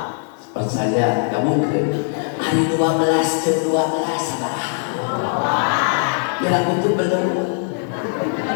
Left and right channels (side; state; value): right; silent; 64 dB below the other